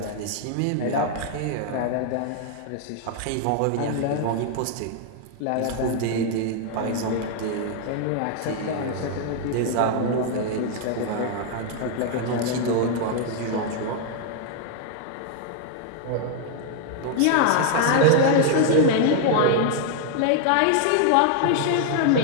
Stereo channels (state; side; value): different; both; correlation 0.00